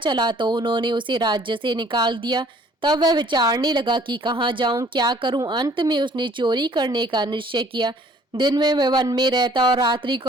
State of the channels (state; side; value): normal; both; correlation 0.57